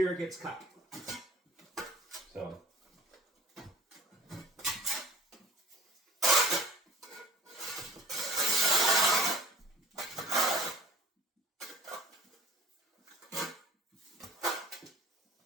gets cut. So.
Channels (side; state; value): both; normal; correlation 0.47